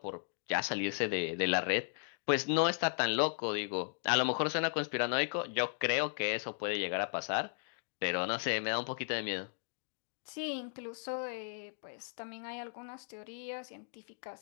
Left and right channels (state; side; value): silent; right; digital silence